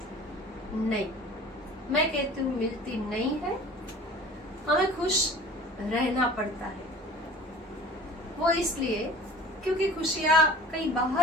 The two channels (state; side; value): normal; both; correlation 0.44